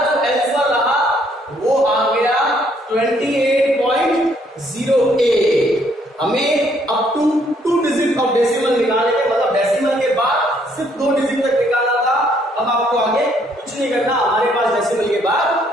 आंसर रहा वो आ गया 28.08। हमें up to 2 digit of decimal निकालने के, मतलब डेसिमल के बाद सिर्फ 2 डिजिट तक निकालना था। अब आपको आगे कुछ नहीं करना, हमारे पास डेसिमल के बाद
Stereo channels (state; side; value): normal; both; correlation 0.68